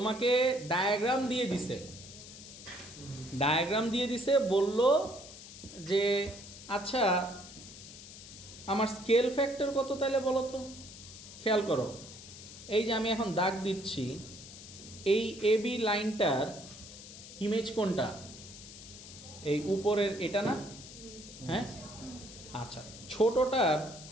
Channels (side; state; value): left; noise; hiss, 15 dB below the sound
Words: ডায়াগ্রাম দিয়ে দিছে, বলল যে আচ্ছা আমার স্কেল ফ্যাক্টর কত তাহলে বলো তো। খেয়াল করো, এই যে আমি এখন দাগ দিচ্ছি, এই AB লাইনটার ইমেজ কোনটা? এই উপরের এটা না? হ্যাঁ, আচ্ছা ছোটটার